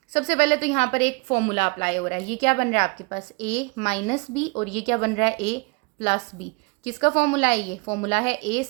सबसे पहले तो यहाँ पर एक फॉर्मूला अप्लाई हो रहा है। ये क्या बन रहा है आपके पास a माइनस बी, और ये क्या बन रहा है a प्लस बी। किसका फॉर्मूला है ये? फॉर्मूला है a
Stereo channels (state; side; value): quieter; left; 29.4 dB